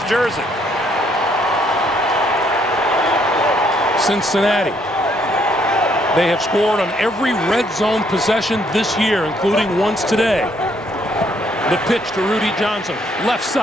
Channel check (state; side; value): normal; both; correlation 0.69